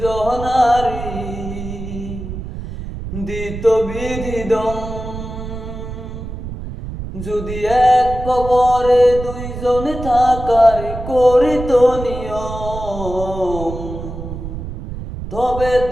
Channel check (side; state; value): right; noise; rumble, 8 dB below the sound